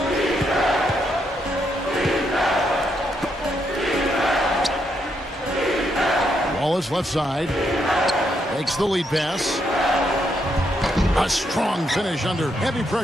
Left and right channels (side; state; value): both; normal; correlation 0.78